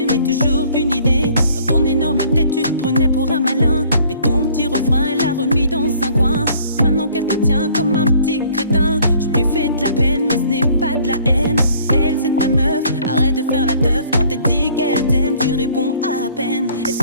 mais toujours qu'une idée. Dans ton énorme tête, tu te prenais pour un malin. Mais ton petit refrain, elle l'a remis dans un coin. Maintenant qu'elle te tient comme un petit crétin, je lui fais de la peine, mais ce n'est pas de la haine. Elle, c'est ta meuf, arrête de faire la teuf. Quand elle dit qu'elle t'aime, tu réponds à peine. Elle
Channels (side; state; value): both; inverted; correlation -0.56